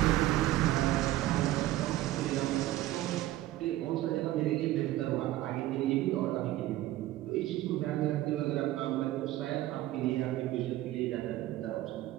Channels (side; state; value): left; quieter; 15.4 dB